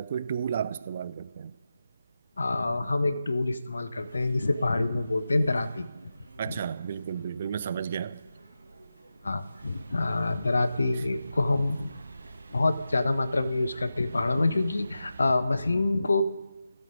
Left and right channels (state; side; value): inverted; both; correlation -0.91